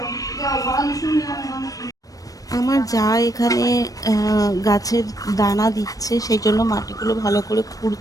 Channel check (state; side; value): late; right; 0.17 ms